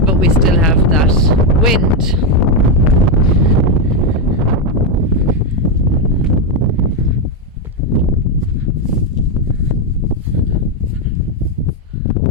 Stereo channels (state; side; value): normal; both; correlation 0.05